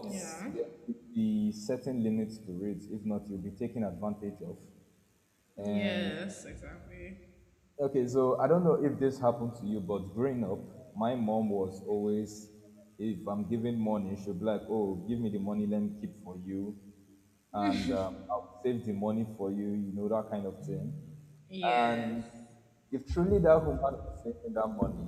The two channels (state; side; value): identical; both; correlation 1.00